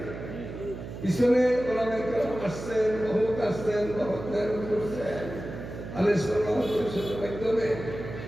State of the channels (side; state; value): right; noise; hum, 10 dB below the sound